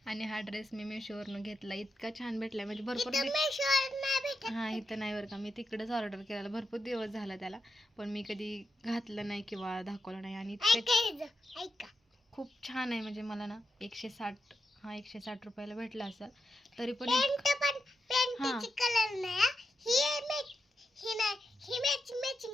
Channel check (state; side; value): normal; both; correlation 0.86